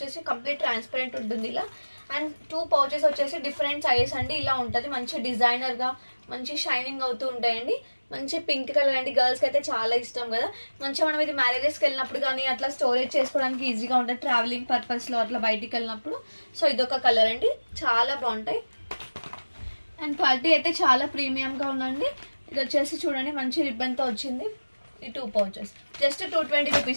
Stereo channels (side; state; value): both; inverted; correlation -1.00